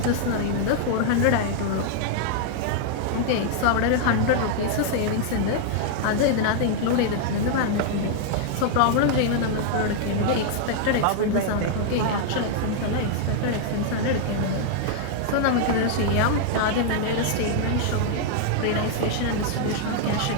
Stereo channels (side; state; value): both; different; correlation 0.00